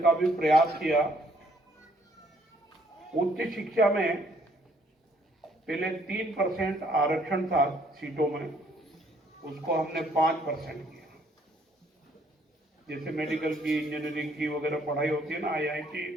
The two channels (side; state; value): both; normal; correlation 0.65